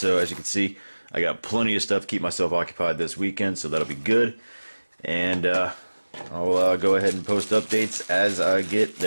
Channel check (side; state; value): both; inverted; correlation -1.00